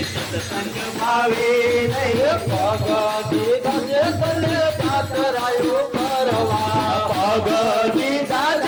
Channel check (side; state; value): both; identical; correlation 1.00